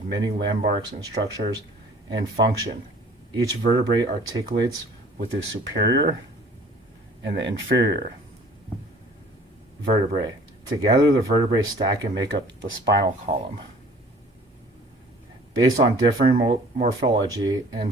many landmarks and structures and function. Each vertebrae articulates with the superior and the inferior vertebrae. Together, the vertebrae stack and make up the spinal column. Based on differing morphology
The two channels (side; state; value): both; normal; correlation 0.51